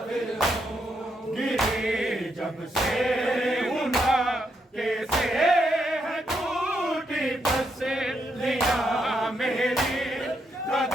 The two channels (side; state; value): both; normal; correlation 0.79